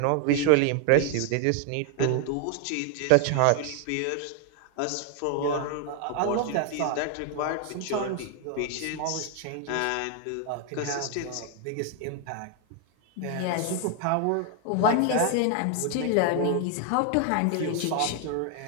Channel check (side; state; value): both; different; correlation 0.00